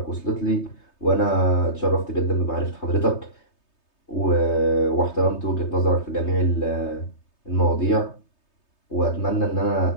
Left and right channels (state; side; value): late; right; 3.3 ms